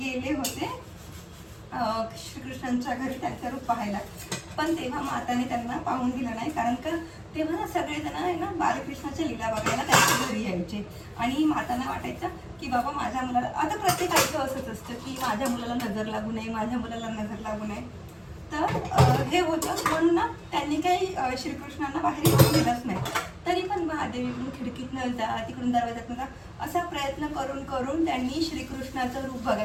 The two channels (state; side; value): identical; both; correlation 1.00